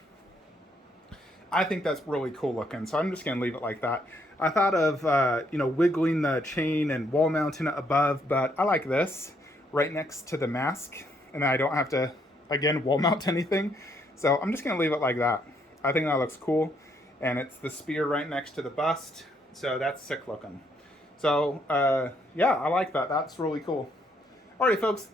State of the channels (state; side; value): normal; both; correlation 0.72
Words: I think that's really cool looking, so I'm just going to leave it like that. I thought of, you know, wiggling the chain and wall mounting it above, but I like this right next to the mask, and I don't have to, again, wall mount anything. So I'm just going to leave it like that. I think that looks cool. And it's the spear right next to the bust. So that's sick looking. So, yeah, I like that. That's really cool. Alrighty, folks,